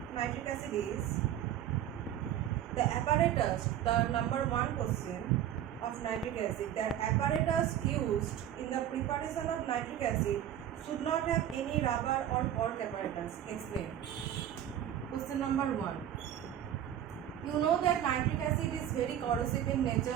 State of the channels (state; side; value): quieter; left; 10.9 dB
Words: nitric acid is the apparatus, the number one question of nitric acid, the apparatus used in the preparation of nitric acid should not have any rubber or cork apparatus. Explain. Question number one. You know that nitric acid is very corrosive in